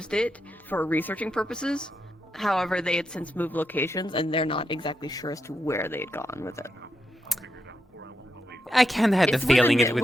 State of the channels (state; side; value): normal; both; correlation 0.84